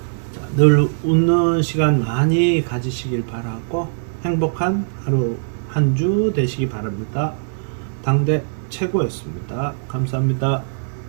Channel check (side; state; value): left; silent; digital silence